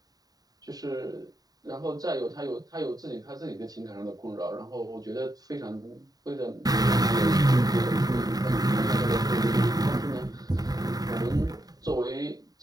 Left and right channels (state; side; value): late; left; 0.18 ms